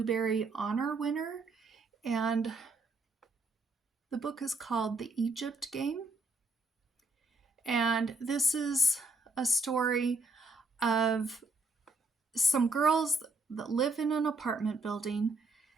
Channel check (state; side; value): quieter; left; 3.0 dB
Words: Honor winner. And the book is called The Egypt Game. And this is a story of some girls that live in an apartment building.